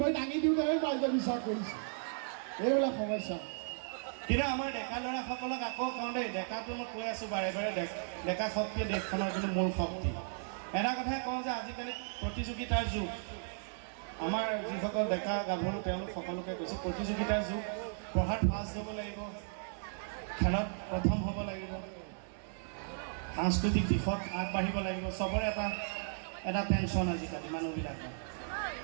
দাঙি দিওঁতেহে ৰাইজে বিশ্বাস কৰিছে এইবিলাক সমস্যা কিন্তু আমাৰ ডেকা ল'ৰাসকলক আকৌ কওঁ দেই ডেকাটো মই কৈ আছোঁ বাৰে বাৰে ডেকা শক্তিয়ে দেশখনৰ কিন্তু মূল শক্তি এটা কথাই কওঁ যে আজিকালি প্ৰতিযোগিতাৰ যুগ আমাৰ যিসকল ডেকা গাভৰু তেওঁলোক সকলোকে কৈছোঁ প্ৰতিযোগিতাৰ যুগ পঢ়াত ফাৰ্ষ্ট হ'ব লাগিব খেলত প্ৰথম হ'ব লাগিব সাংস্কৃতিক দিশত আগবাঢ়িব লাগিব চবৰে এটা টেনশ্যন আজিকালি মানুহবিলাকৰ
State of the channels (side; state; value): left; silent; digital silence